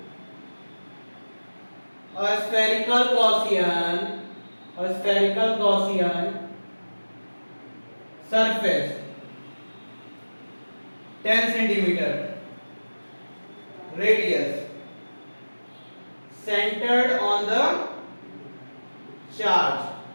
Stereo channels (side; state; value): both; inverted; correlation -1.00